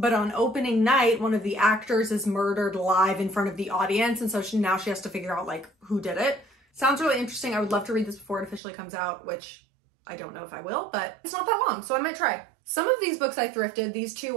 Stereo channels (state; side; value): drops out; left; at 8.6 s